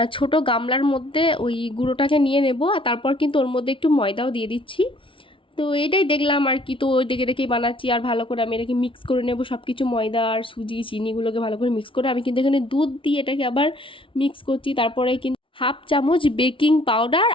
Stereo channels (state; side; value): late; right; 0.25 ms